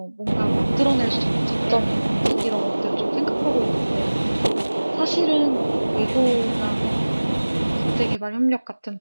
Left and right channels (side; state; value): both; inverted; correlation -1.00